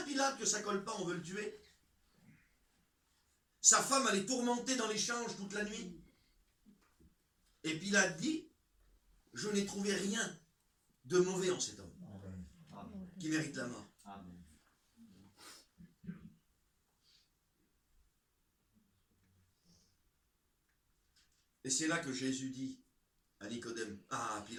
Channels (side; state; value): both; identical; correlation 1.00